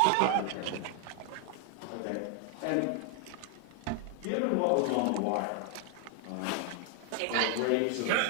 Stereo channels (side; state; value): both; different; correlation 0.00